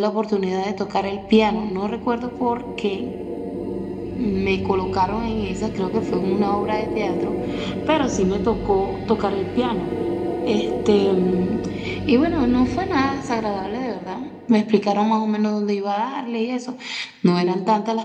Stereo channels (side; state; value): both; identical; correlation 1.00